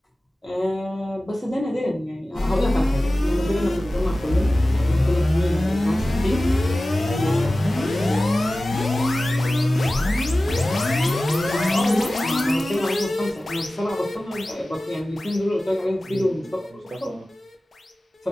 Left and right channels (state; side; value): normal; both; correlation 0.96